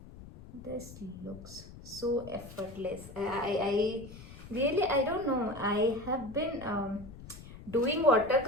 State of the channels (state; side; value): noise; left; rumble, 16 dB below the sound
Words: this looks so effortless. I really, I don't know, I have been doing